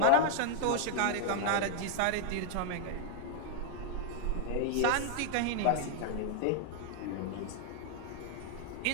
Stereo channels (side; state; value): both; different; correlation 0.00